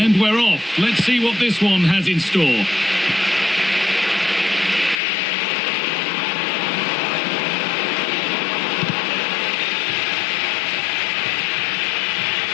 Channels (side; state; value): right; drops out; at 5.0 s